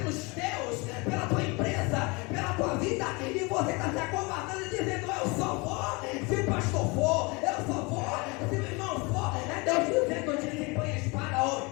teus, pela tua empresa, pela tua vida. E você está se acovardando e dizendo: eu só vou se o pastor for, eu só vou se o irmão for. É Deus dizendo: desembanha a espada, ó,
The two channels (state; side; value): quieter; right; 27.4 dB